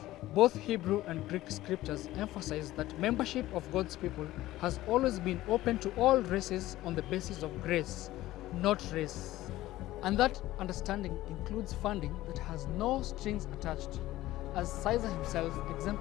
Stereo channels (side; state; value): right; quieter; 16.0 dB